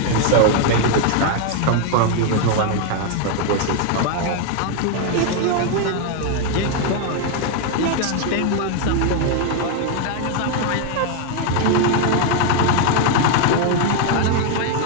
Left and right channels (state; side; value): different; both; correlation 0.01